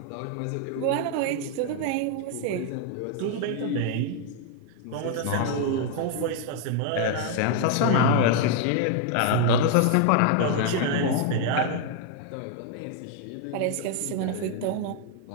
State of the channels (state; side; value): different; both; correlation 0.00